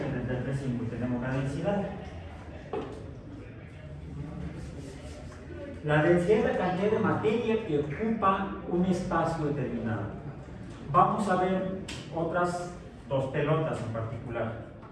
entre 33,5. Y tenemos la densidad. La densidad es la cantidad de materia que ocupa un espacio determinado. Vamos a ver otras dos pelotas en particular:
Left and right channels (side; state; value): both; identical; correlation 1.00